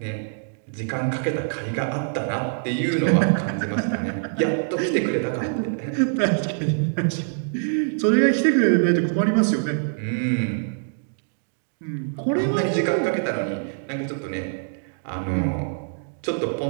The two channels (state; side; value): silent; left; digital silence